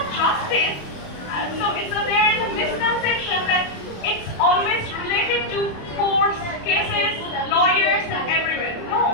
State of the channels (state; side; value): late; right; 28 ms